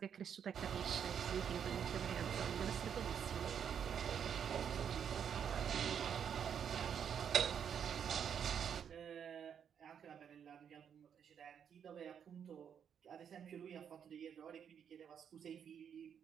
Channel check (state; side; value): quieter; left; 8.0 dB